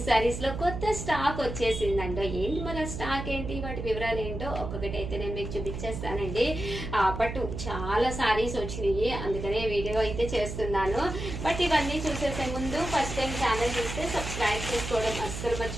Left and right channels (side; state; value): right; noise; hum, 6 dB below the sound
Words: సారీస్ లో కొత్త స్టాక్ వచ్చేసిందండి. ఏంటి మన స్టాక్ ఏంటి, వాటి వివరాలు ఏంటో ఒక్కొక్కటి అయితే నేను మీకు చూపించేస్తానండి. బట్ చాలా సారీస్ వచ్చినాయి, అందుకనే వీడియో అయితే చేస్తున్నాను. బట్ ఇవన్నీ చూసేసే ముందు ఫస్ట్ టైం ఛానల్ చూస్తే సబ్స్క్రైబ్ చేసుకోవడం అస్సలు